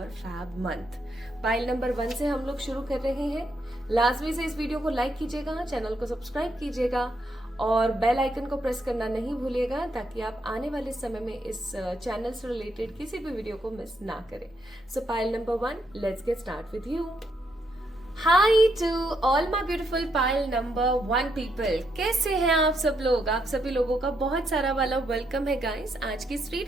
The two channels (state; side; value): normal; both; correlation 0.77